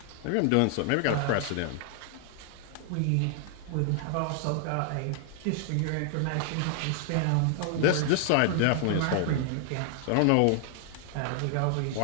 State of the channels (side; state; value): both; different; correlation 0.00